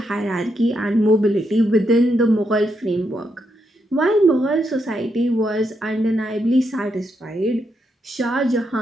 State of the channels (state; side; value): normal; both; correlation 0.81